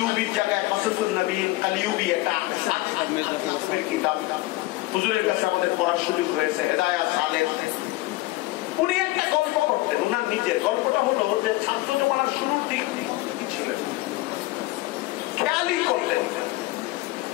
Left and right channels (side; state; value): right; quieter; 19.6 dB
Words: জায়গায় কাসাসুন নবীন, কালিউবি একটা কিতাব হুজুরের কাছে আমাদের পড়ার সুযোগ হয়েছে, হেদায়াত সালেহ। উনি একটা গল্প করতেন, উনার নিজের গল্পটা হলো যে ছাত্র জমানার শুরুর দিক ছিলেন, খেয়ালই করতেন,